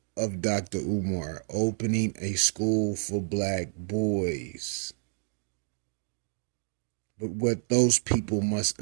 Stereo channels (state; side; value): silent; left; digital silence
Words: of Dr. Umar opening a school for black boys. But what those people must